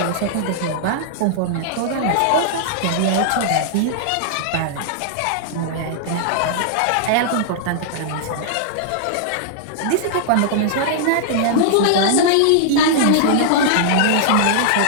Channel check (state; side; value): different; both; correlation -0.01